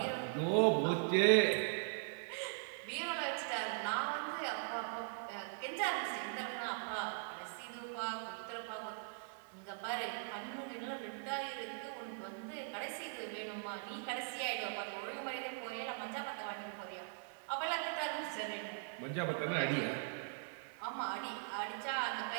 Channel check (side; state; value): left; silent; digital silence